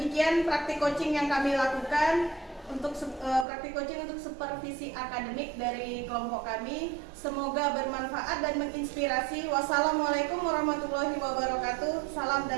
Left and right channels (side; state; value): left; drops out; at 3.5 s